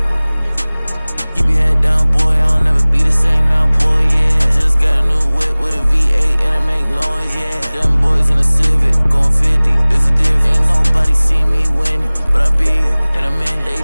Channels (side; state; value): both; inverted; correlation -1.00